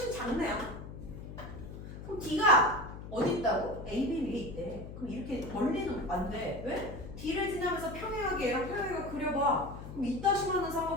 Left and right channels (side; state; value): left; noise; hum, 11 dB below the sound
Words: 작네요. 그럼 D가 어디 있다고? AB 위에 있대. 그럼 이렇게 멀리는 안 돼. 왜? D를 지나면서 평행하게 얘랑 평행하게 그려봐. 그럼 이따시만한